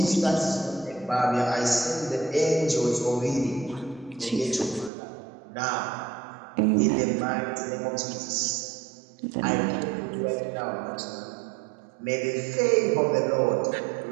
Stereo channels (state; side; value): drops out; left; at 4.9 s